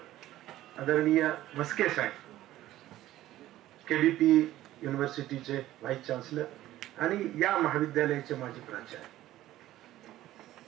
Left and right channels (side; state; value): left; quieter; 14.7 dB